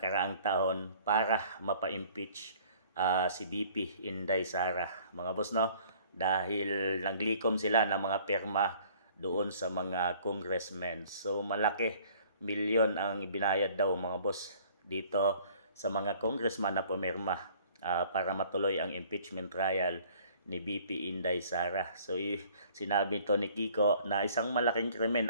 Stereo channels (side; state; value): both; inverted; correlation -0.55